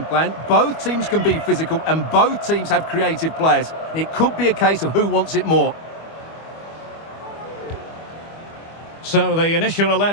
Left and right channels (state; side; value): late; right; 25 ms